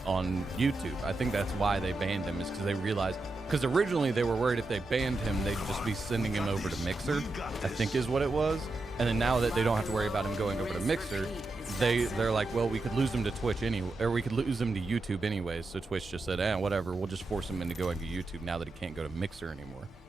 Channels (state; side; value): quieter; left; 3.1 dB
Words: on YouTube. I think that's why they banned him, is because they realized. Because originally they were worried if they banned him, they'd just be sending him over to Mixer, I think is what it was. And then now that they don't have to worry about him going over to Mixer, they're like, well, we could lose him to Twitch anyway, or we could lose him to YouTube anyways. So Twitch just said, whatever, we'll just force him into going to YouTube now that he can't go to Mixer anymore.